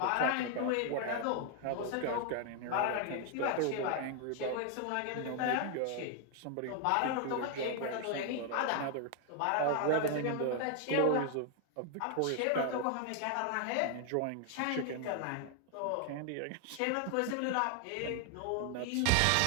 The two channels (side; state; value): both; different; correlation 0.00